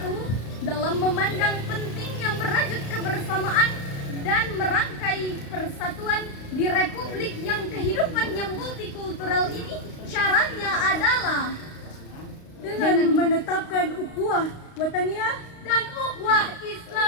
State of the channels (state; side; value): late; right; 35 ms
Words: dalam memandang pentingnya merajut kebersamaan dan merangkai persatuan di republik yang kehidupannya multikultural ini, syaratnya adalah dengan menetapkan ukhuwah wataniyah dan ukhuwah